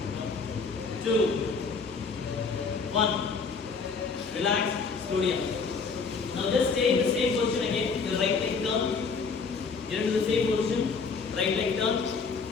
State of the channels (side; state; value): right; quieter; 4.9 dB